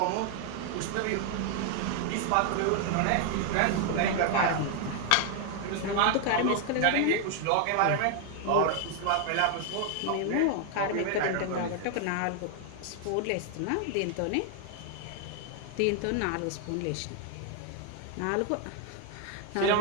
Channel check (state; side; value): different; both; correlation 0.00